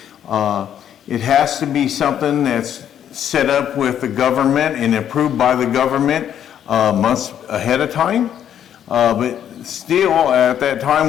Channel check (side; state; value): right; quieter; 9.8 dB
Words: It has to be something that's set up with the government and approved by the government months ahead of time. But still, at that